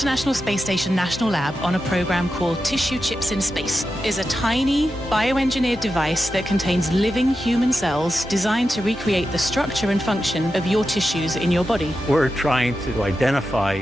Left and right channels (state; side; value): normal; both; correlation 0.90